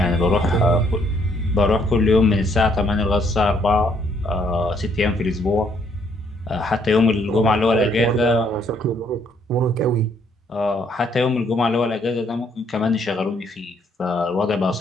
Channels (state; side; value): normal; both; correlation 0.68